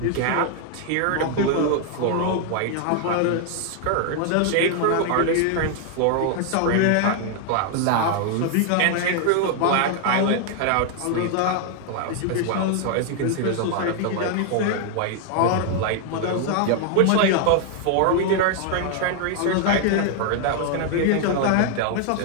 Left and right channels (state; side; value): different; both; correlation 0.00